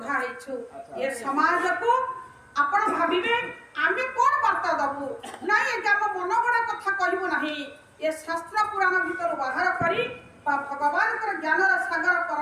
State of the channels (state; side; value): identical; both; correlation 1.00